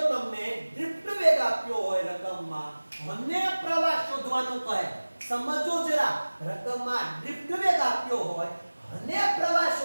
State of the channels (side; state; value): both; inverted; correlation -1.00